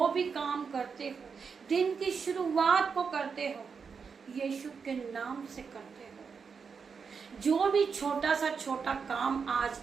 भी काम करते हो, दिन की शुरुआत को करते हो, यीशु के नाम से करते हो। जो भी छोटा सा छोटा काम आज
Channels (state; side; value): quieter; left; 5.8 dB